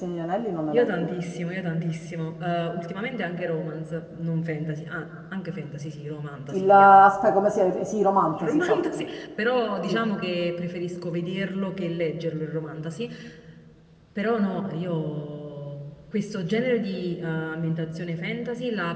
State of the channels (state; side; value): identical; both; correlation 1.00